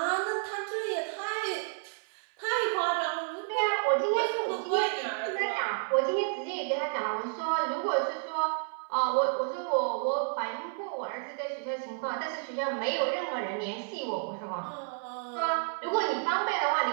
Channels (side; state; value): left; silent; 57 dB below the other